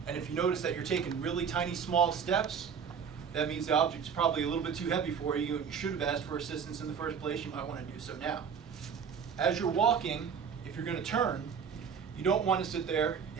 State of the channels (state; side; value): quieter; left; 6.9 dB